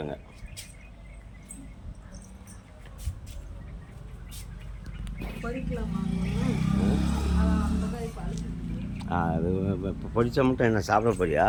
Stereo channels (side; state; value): both; identical; correlation 1.00